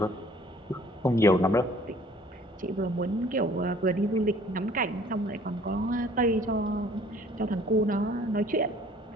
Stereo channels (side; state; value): both; normal; correlation 0.55